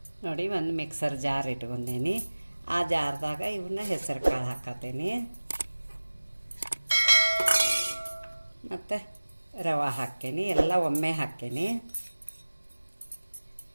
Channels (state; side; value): inverted; both; correlation -1.00